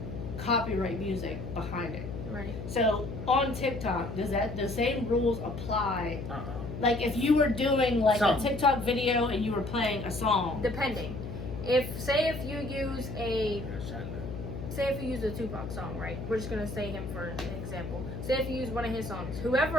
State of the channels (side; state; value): left; noise; hum, 7 dB below the sound